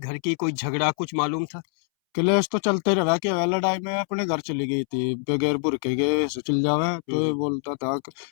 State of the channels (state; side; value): silent; right; 62 dB below the other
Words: की, कोई झगड़ा कुछ मालूम था? क्लेश तो चलते रहा कि वह लड़ाई में अपने घर चली गई थी बगैर बुरके के, ऐसे चल जावे। तो ये बोलता था कि